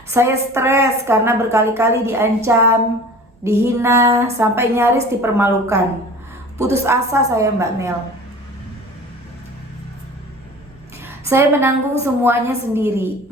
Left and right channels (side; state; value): both; normal; correlation 0.42